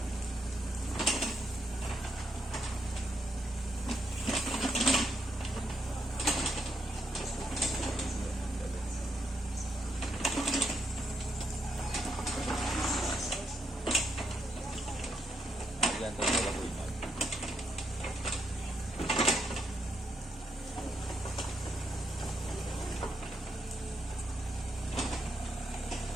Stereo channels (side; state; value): both; normal; correlation 0.79